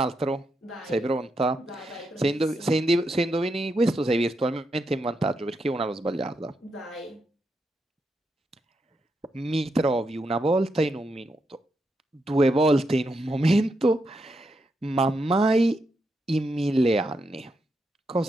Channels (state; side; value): normal; both; correlation 0.83